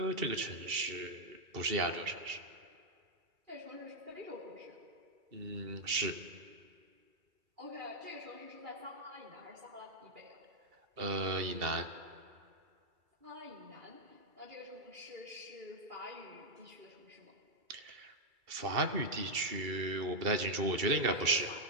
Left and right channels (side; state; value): left; late; 2.7 ms